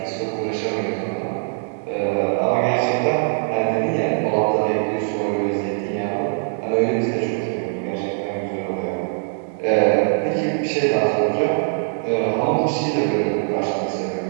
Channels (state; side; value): silent; left; digital silence